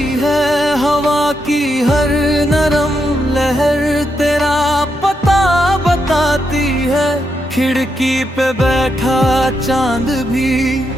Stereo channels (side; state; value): both; normal; correlation 0.82